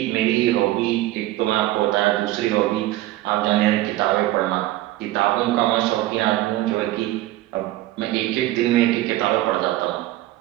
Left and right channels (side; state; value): left; quieter; 16.1 dB